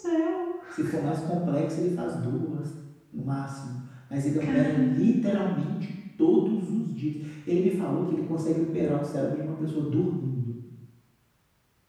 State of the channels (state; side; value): identical; both; correlation 1.00